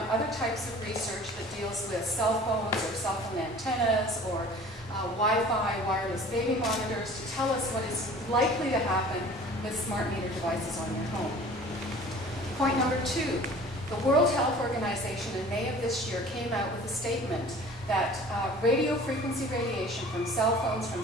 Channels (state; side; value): normal; both; correlation 0.45